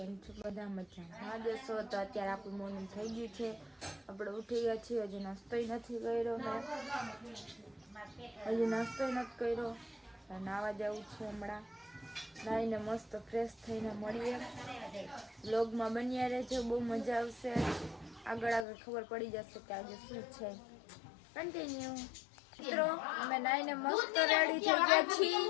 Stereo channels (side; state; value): right; drops out; at 18.7 s